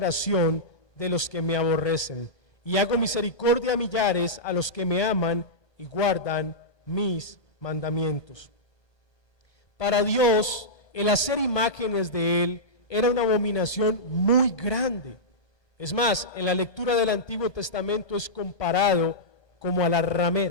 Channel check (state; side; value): late; right; 1.3 ms